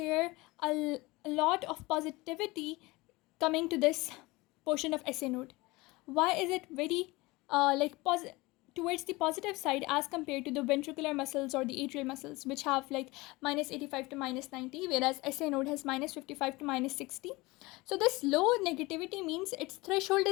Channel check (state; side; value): quieter; right; 22.3 dB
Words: a lot of positivity coming to this portion of SA node? Why is it very towards the positive side as compared to the ventricular muscles or the atrial muscles, which have like minus 85 to minus 90, whereas SA node has minus 55 to minus 60? So this low negativity means its threshold